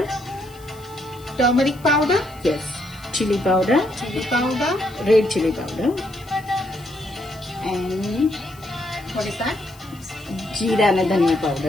Turmeric powder? yes chili powder Chili powder? red chili powder and What is that? જીરા અને ધનિયા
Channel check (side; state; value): left; noise; hiss, 24 dB below the sound